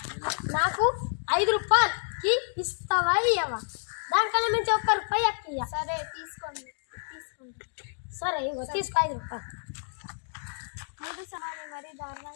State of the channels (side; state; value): right; silent; 59 dB below the other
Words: నాకు 5 రూపాయలకి ఇస్తావా ఇవ్వవా? దానికన్నా మించి 1 రూపాయి అక్క. సరే తీసుకోండి. సరే ఇగో తీసుకో 5 రూపాయలు. 3 సంవత్సరాలు మరి